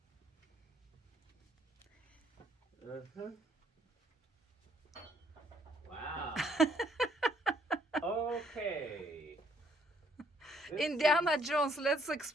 Uh-huh. Wow. Okay. Indiana Jones, let's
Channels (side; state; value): both; normal; correlation 0.67